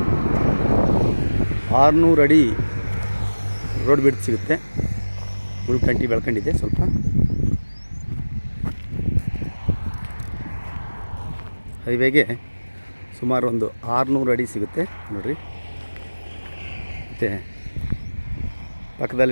600 ಅಡಿ ರೋಡ್ ಬಿಡ್ತು ಸಿಗುತ್ತೆ. ಉಳ್ಕಂಟಿ ಬೆಳ್ಕೊಂಡಿದೆ ಸ್ವಲ್ಪ. ಹೈವೇಗೆ ಸುಮಾರು ಒಂದು 600 ಅಡಿ ಸಿಗುತ್ತೆ ನೋಡಿರಿ. ಮತ್ತು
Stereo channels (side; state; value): both; inverted; correlation -1.00